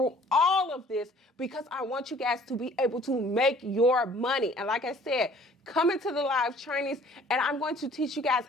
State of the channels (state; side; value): normal; both; correlation 0.54